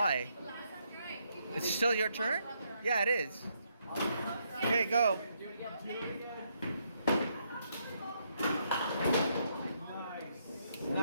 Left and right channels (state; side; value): inverted; both; correlation -0.76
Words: It's still your turn? Yeah, it is. Okay, go. Nice.